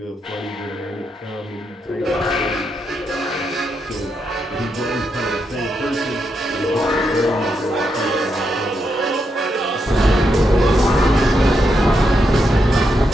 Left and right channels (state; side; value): normal; both; correlation 0.82